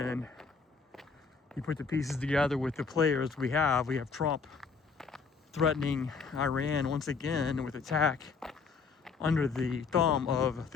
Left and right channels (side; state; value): right; quieter; 5.0 dB